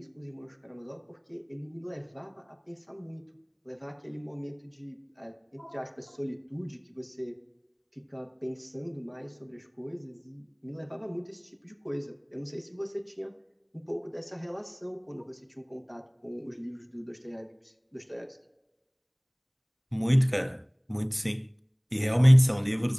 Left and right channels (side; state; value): both; identical; correlation 1.00